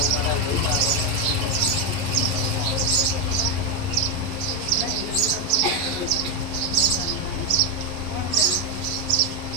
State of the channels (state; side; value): late; left; 11 ms